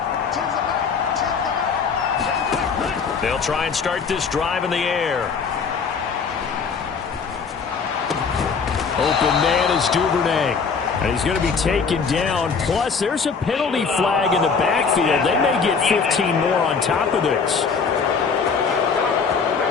They'll try and start this drive in the air. Open man is Duvernay. And he's going to be taken down. Plus, there's a penalty flag in the backfield. They may get 15 more on top of this.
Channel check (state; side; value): quieter; right; 5.5 dB